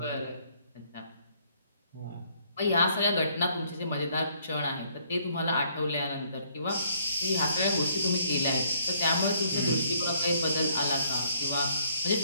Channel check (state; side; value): inverted; both; correlation -0.66